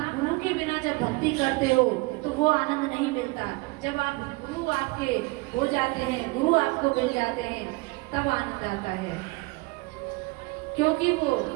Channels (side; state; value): left; quieter; 24.6 dB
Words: गुरु के बिना जब भक्ति करते हो तो वो आनंद नहीं मिलता। जब आप गुरु आपके हो जाते हैं, गुरु आपको मिल जाते हैं, तब आनंद आता है। क्योंकि वो